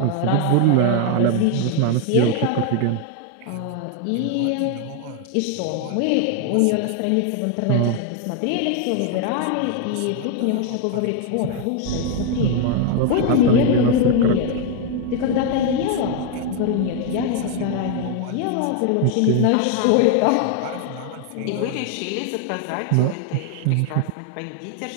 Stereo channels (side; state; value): both; different; correlation 0.00